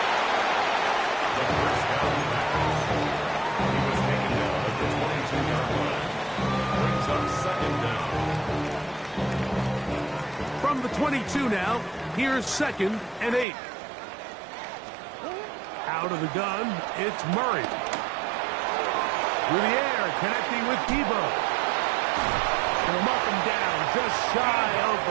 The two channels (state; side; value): drops out; left; at 13.5 s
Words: 22 now. Here's 2nd and 8. Out of the gun, it's Murray. Through the air, connecting with Debo. And him up and down, just shy of